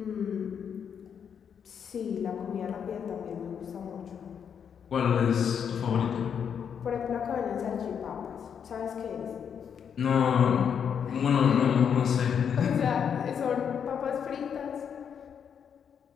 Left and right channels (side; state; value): right; quieter; 7.6 dB